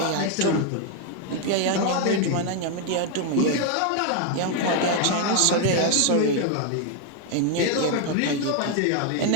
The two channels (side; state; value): both; different; correlation 0.00